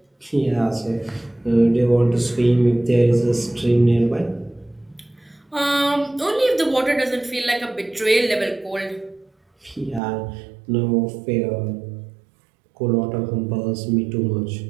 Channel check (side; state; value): left; drops out; at 10.0 s